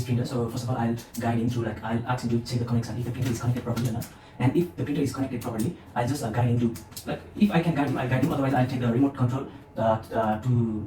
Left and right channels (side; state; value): both; identical; correlation 1.00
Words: printer, so first of all I'll guide him through, like I'll ask him to check the connection if the printer is connected properly or not. And if the printer is connected properly, I'll just guide him to, like if I can guide him, I'll guide him. Otherwise I'll take the remote control to